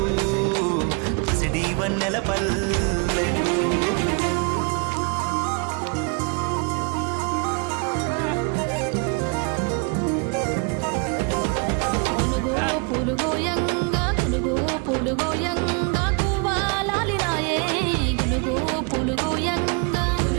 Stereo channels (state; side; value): quieter; left; 33.6 dB